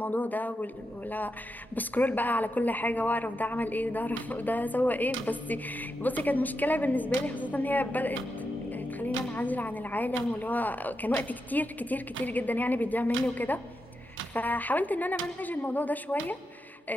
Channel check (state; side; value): normal; both; correlation 0.86